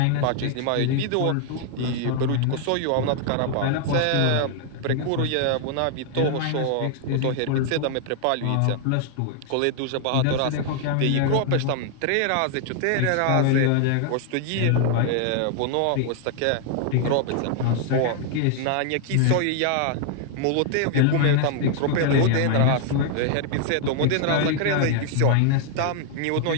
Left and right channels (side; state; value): both; different; correlation 0.00